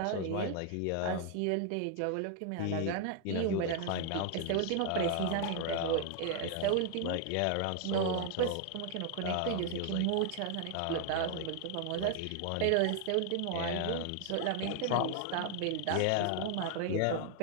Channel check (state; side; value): different; both; correlation 0.00